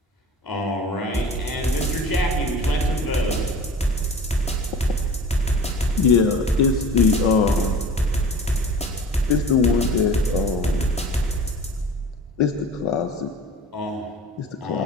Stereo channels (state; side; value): normal; both; correlation 0.40